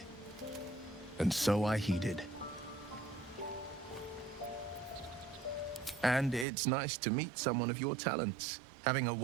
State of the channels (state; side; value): drops out; left; at 6.5 s